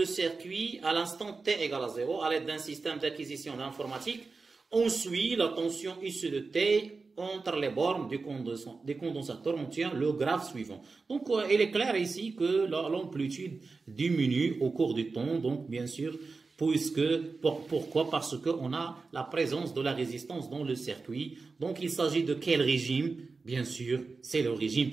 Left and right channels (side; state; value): left; quieter; 4.2 dB